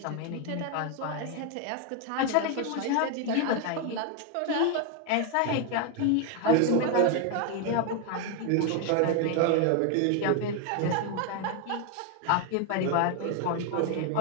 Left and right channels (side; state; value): both; different; correlation 0.01